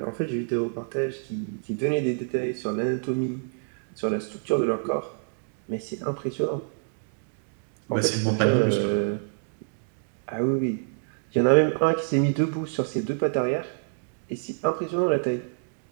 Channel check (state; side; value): silent; left; digital silence